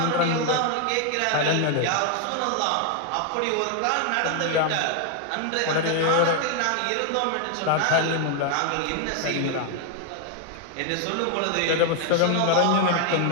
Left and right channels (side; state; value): both; different; correlation 0.00